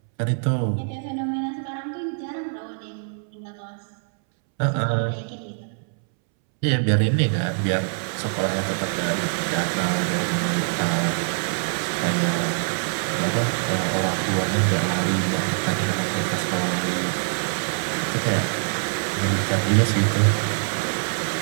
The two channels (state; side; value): silent; left; 63 dB below the other